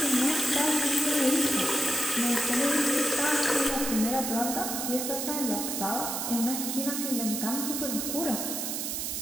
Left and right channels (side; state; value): right; noise; hiss, 2 dB below the sound